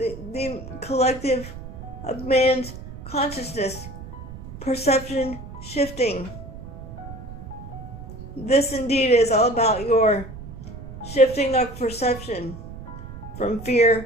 collective of man's consciousness, perception shifting. This indeed is all about your shifting of perception from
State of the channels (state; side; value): noise; right; rumble, 12 dB below the sound